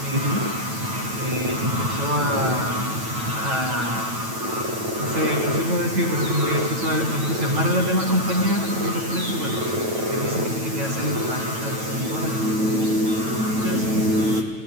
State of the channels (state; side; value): late; left; 9.1 ms